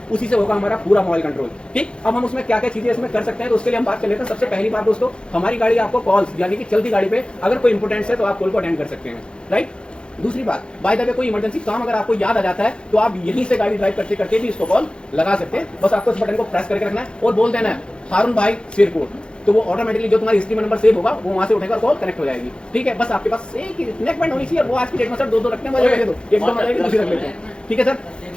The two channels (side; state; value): right; late; 0.054 ms